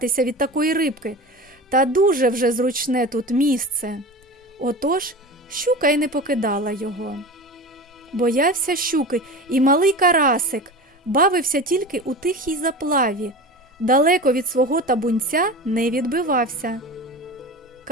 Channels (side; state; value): both; normal; correlation 0.31